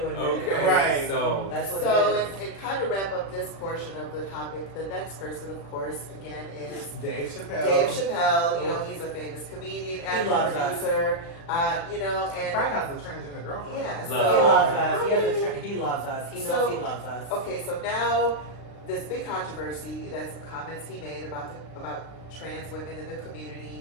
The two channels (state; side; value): late; right; 36 ms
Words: admit it. Okay. Right. So That's what so it is. and kind of wrap up this portion of the topic, the next person, of course, again, is Dave Chappelle. Dave Chappelle. You know, he's a famous comedian, actor, loves us. producer. You know, and Frank has a transgender girlfriend. yeah, He Love. loves us. He loves us. He knows So- he loves us. okay, so now this big controversy, that some comments he made about trans women in the